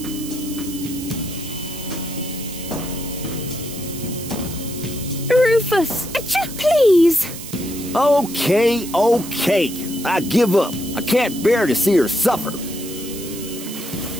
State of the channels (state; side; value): noise; right; hiss, 11 dB below the sound